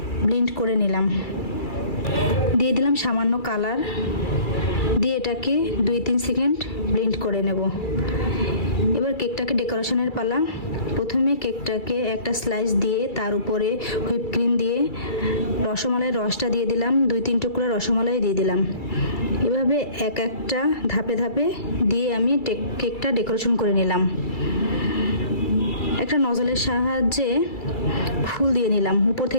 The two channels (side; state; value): right; late; 2.3 ms